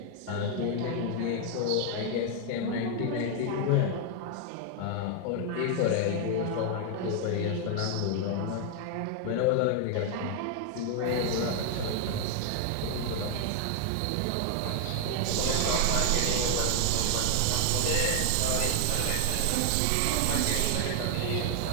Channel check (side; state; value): both; different; correlation 0.00